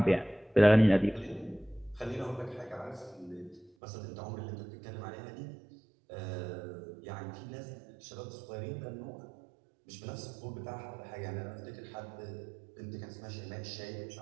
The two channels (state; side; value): drops out; left; at 3.7 s